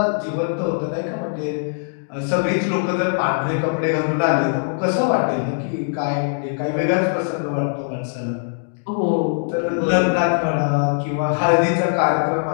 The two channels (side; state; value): right; silent; digital silence